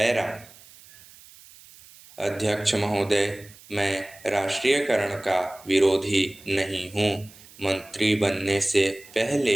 अध्यक्ष महोदय, मैं राष्ट्रीयकरण का विरोधी नहीं हूँ। मंत्री बनने से पहले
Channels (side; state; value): right; noise; hiss, 22 dB below the sound